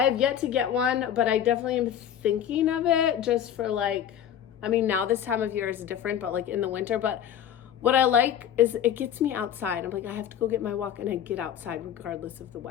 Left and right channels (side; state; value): right; quieter; 9.8 dB